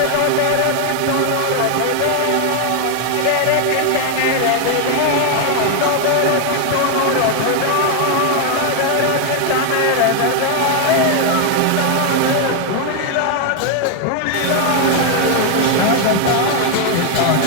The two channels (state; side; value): different; both; correlation 0.01